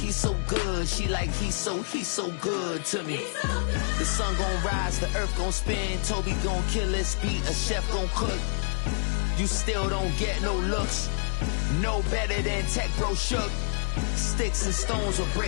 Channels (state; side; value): silent; right; 60 dB below the other